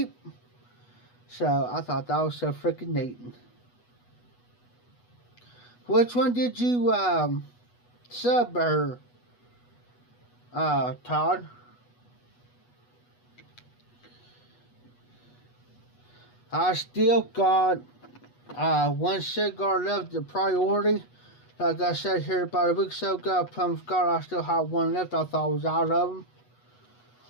So I thought that was so freaking neat. Which one did you sub her, Todd? I still got one cigar left, the priority. Like I said here about a week or so ago, plum cigar, I still have one left. I thought I was out of them.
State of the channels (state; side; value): late; right; 8.2 ms